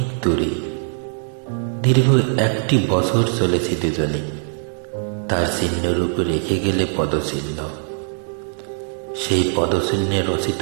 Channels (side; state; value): left; silent; 65 dB below the other